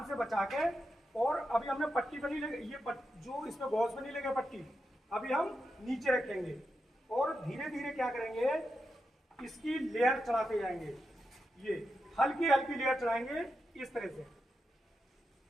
से बचा के। और अभी हमने पट्टी पर नहीं लगे, ये जो इसमें गॉज में नहीं लगे पट्टी, अभी हम नीचे रखेंगे और धीरे धीरे क्या करेंगे, इसकी लेयर चढ़ाते जाएंगे। ये हल्की हल्की लेयर चढ़ाएंगे इस तरह से,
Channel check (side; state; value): both; normal; correlation 0.87